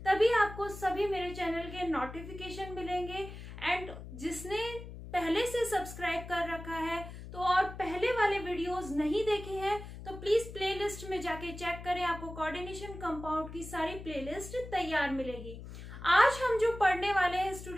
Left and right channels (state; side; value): noise; left; hum, 12 dB below the sound